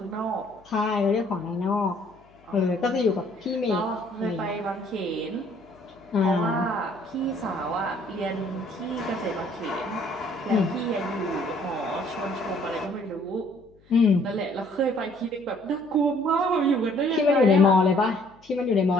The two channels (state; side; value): noise; left; hum, 29 dB below the sound